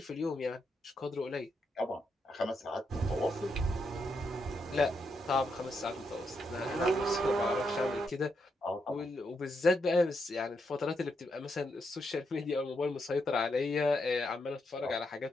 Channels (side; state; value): both; normal; correlation 0.81